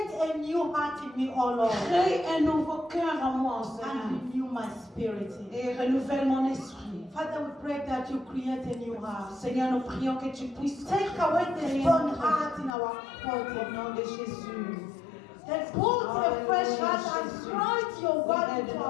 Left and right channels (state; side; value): drops out; right; at 12.8 s